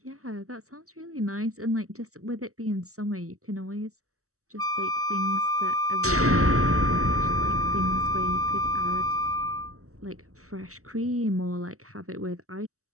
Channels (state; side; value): late; left; 0.65 ms